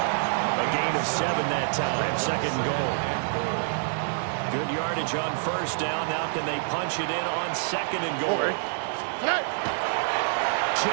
A gain of 7 that time. 2nd goal. Good yardage on first down. Now can they punch it in on 2nd and goal?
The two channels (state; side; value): silent; left; 60 dB below the other